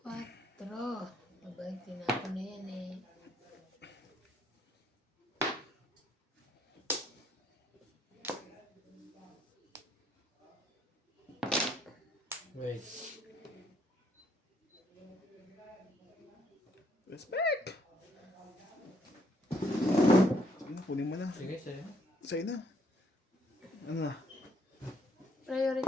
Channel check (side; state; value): both; normal; correlation 0.68